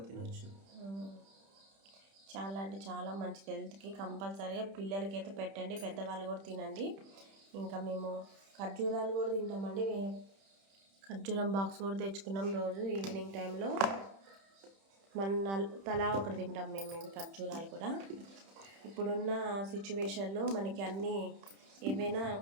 తినొచ్చు. చాలా అంటే చాలా మంచిది హెల్త్కి. కంపల్సరీగా పిల్లలకి అయితే పెట్టండి, పెద్దవాళ్ళు కూడా తినండి. ఇంకా మేము ఖర్జూరాలు కూడా తింటామండి. ఖర్జూరం బాక్స్ కూడా తెచ్చుకున్నాం. రోజు ఈవినింగ్ టైంలో తలా ఒకటి తింటాం మేము. ఇవి ఖర్జూరాలు కూడా ఇప్పుడున్న సిచ్యువేషన్లో మనకి అన్నీ ఏవైనా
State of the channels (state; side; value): late; left; 31 ms